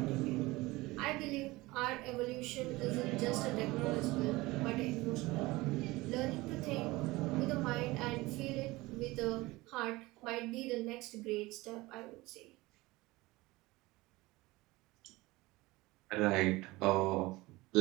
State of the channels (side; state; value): left; quieter; 20.8 dB